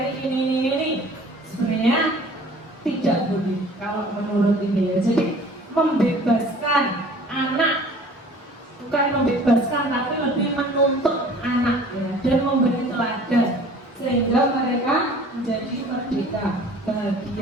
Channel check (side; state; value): both; normal; correlation 0.48